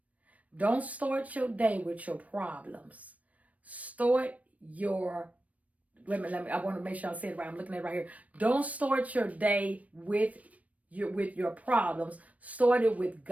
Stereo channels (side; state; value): left; late; 0.068 ms